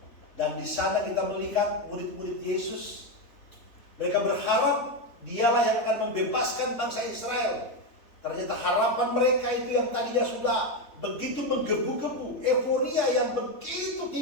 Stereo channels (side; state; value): right; late; 3.7 ms